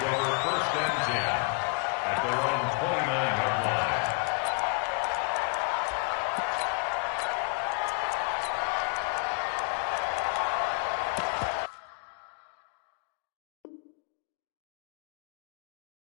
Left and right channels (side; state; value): right; quieter; 32.0 dB